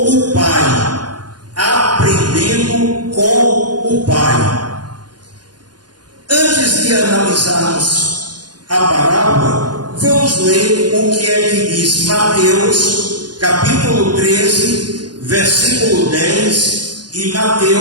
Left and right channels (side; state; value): left; late; 0.70 ms